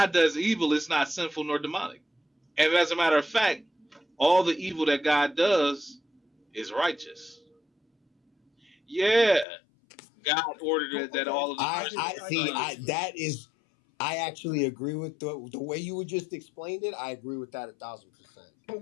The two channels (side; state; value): right; drops out; at 9.5 s